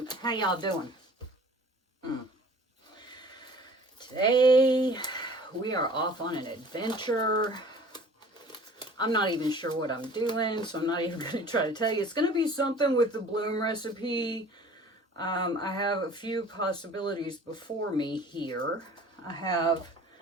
How y'all doing? Today, we are off on an adventure. I'm not even sure what I'm doing, so I'm not even going to try to tell you. It's going to be something with the bloom recipe. I have a few possibilities before me here. I have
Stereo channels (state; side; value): normal; both; correlation 0.48